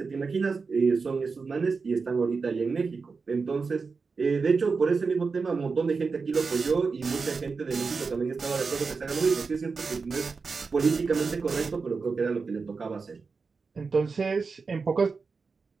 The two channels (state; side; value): quieter; left; 4.7 dB